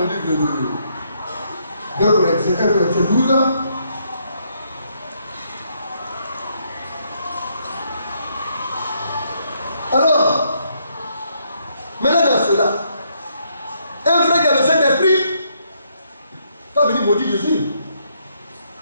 livre de 2 Corinthiens 12. Alors, maintenant dans cela, un frère qui a le Saint-Esprit pas venir maudire Jésus.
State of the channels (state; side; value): inverted; both; correlation -0.73